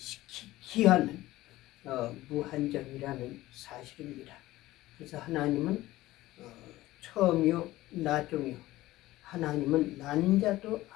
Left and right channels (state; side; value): quieter; right; 17.0 dB